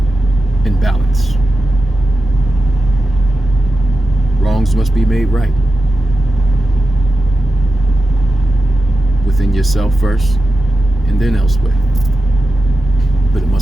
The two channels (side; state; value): both; normal; correlation 0.91